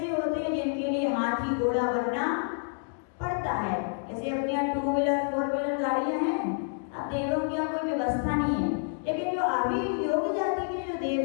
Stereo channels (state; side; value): silent; right; 59 dB below the other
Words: होते हैं जिनके लिए हाथी घोड़ा बनना पड़ता है। जैसे अपने यहाँ 2 व्हीलर 4 व्हीलर गाड़ियां हैं, अब देवों की यहाँ कोई व्यवस्था नहीं है, लेकिन जो आभियोग जाति के जो